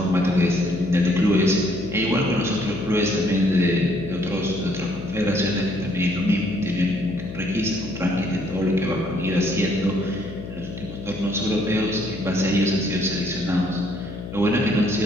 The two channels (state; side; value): noise; left; hum, 10 dB below the sound